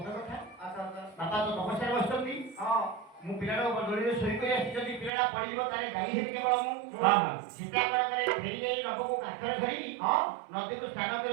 କଥା। ଆଚ୍ଛା ଆଚ୍ଛା ବାପା ତ ତପସ୍ୟାରେ ବସିଛନ୍ତି, ହଁ ମୁଁ ପିଲାଟାକୁ ଦୋଳିରେ ଶୋଇ କରି ଆସିଛି, ଯଦି ପିଲାଟା ପଡ଼ିଯିବ ତାହେଲେ ଦାୟୀ ହେବି କେବଳ ମୁଁ। ହଁ, ହଁ। ସୀତା କଣ କରେ? ଫେରି ଯାଇ ନବକୁ କାଖରେ ଧରି ହଁ ନଦୀକୁ ସ୍ନାନ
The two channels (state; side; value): drops out; left; at 5.1 s